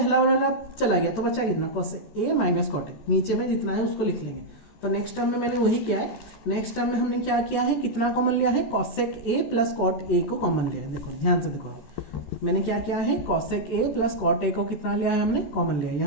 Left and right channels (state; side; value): late; right; 14 ms